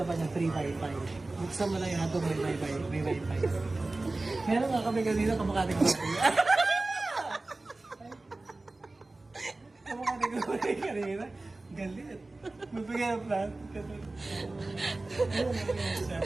pa niya, free wifi. Buksan mo lang yung hotdog, may wifi. Meron nga kami kanina, kamukha ng baboy. Kamukha ng baboy kanina. Galit. Magbigay ng plan.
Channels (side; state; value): left; quieter; 3.1 dB